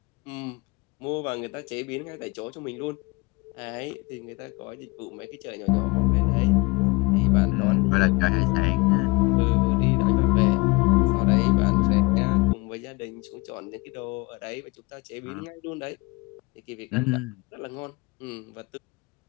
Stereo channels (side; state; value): right; quieter; 26.7 dB